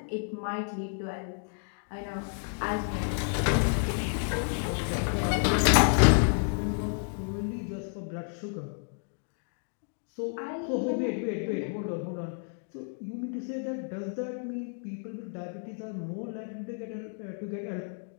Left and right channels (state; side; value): silent; right; 57 dB below the other